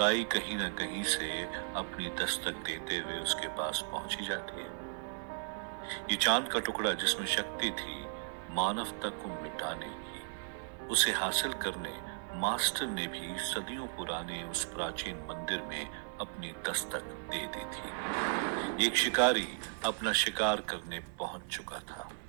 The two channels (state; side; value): silent; left; 54 dB below the other